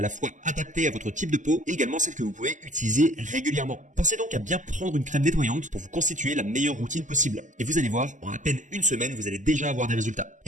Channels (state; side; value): late; left; 0.37 ms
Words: la fois adaptée à votre type de peau et également celle que vous pouvez utiliser régulièrement. Pensez donc à bien prendre une crème nettoyante pour vous constituer la meilleure routine possible. Et vous allez voir, en à peine une semaine, vous allez déjà avoir des résultats.